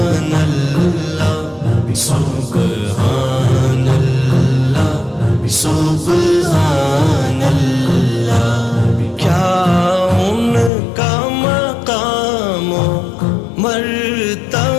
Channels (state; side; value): drops out; right; at 10.7 s